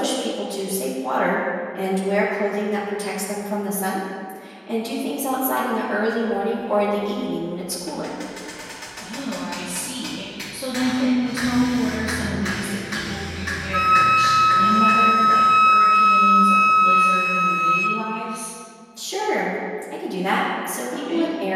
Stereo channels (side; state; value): both; identical; correlation 1.00